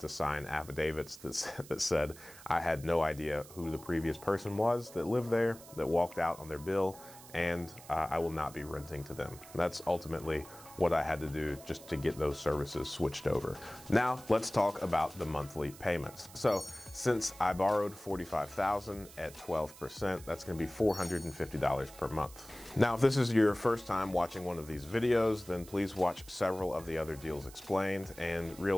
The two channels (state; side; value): noise; right; hiss, 19 dB below the sound